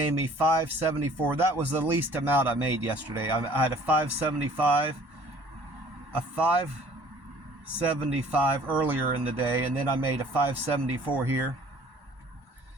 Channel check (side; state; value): left; late; 1.1 ms